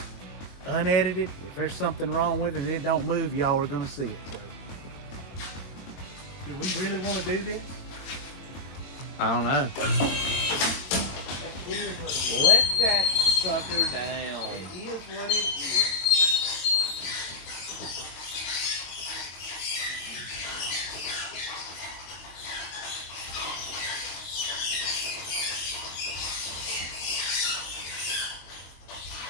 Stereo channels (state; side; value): late; right; 22 ms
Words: unedited. If there's something wrong with it and it don't move, y'all are going to see it. So, do we really want to do this? I don't know. Let that sucker down. It is what it is.